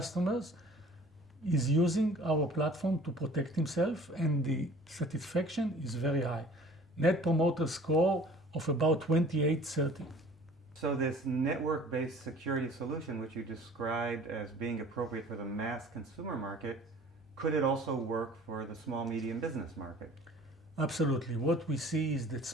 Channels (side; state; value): both; normal; correlation 0.48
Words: is using our platform to protect himself, and the satisfaction is very high. Net promoter score of about 28-30. So this network-based security solution, which you described as being appropriate for the mass consumer market, could it also work for the small, medium business market? Absolutely. What we see is that